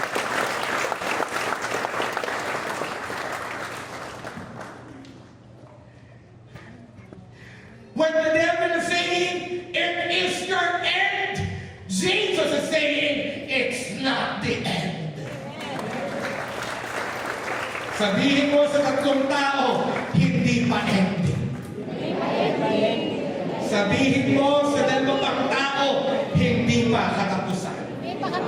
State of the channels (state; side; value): identical; both; correlation 1.00